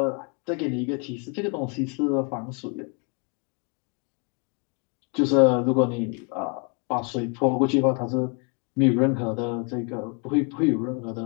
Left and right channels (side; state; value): right; quieter; 34.8 dB